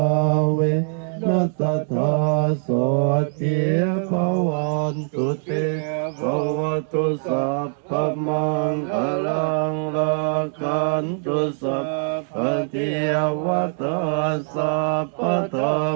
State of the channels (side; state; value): left; silent; 64 dB below the other